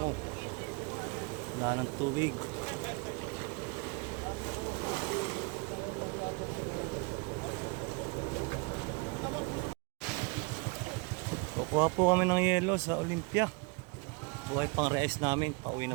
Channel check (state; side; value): quieter; left; 29.9 dB